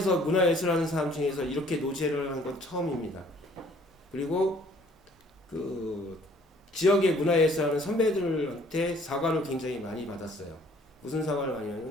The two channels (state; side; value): normal; both; correlation 0.58